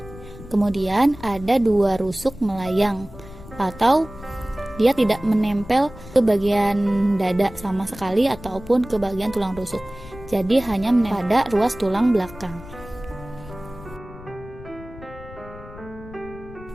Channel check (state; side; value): noise; left; rumble, 16 dB below the sound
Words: Kemudian ada 2 rusuk melayang, atau dia tidak menempel ke bagian dada sama sekali ataupun ke bagian tulang rusuk. Jadi hanya menempel pada ruas tulang belakang.